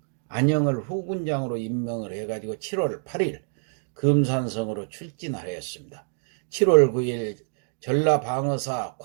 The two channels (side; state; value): left; silent; digital silence